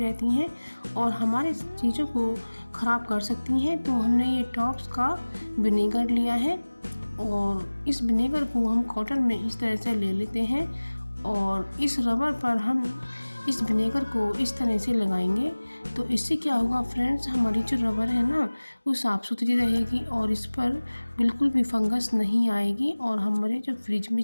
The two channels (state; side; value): inverted; both; correlation -1.00